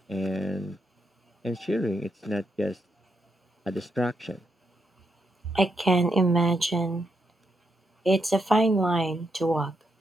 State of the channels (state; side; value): normal; both; correlation 0.81